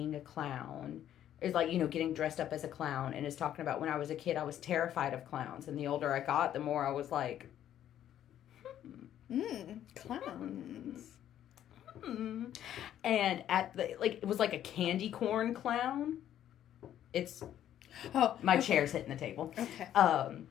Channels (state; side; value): quieter; right; 11.1 dB